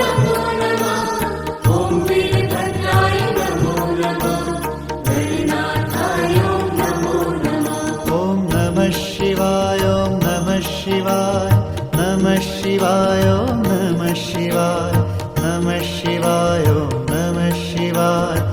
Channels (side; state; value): both; identical; correlation 1.00